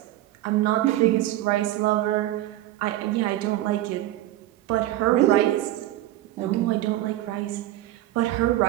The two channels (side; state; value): left; quieter; 15.2 dB